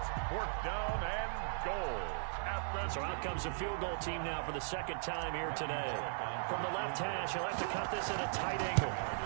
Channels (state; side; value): silent; left; 52 dB below the other